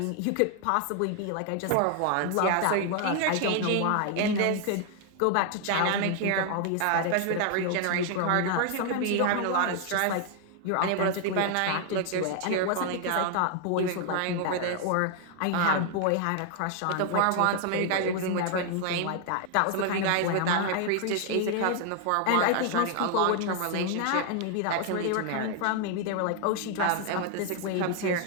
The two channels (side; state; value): both; different; correlation 0.00